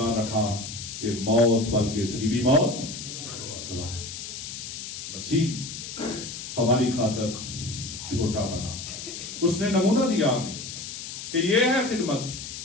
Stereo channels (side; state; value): left; noise; hiss, 9 dB below the sound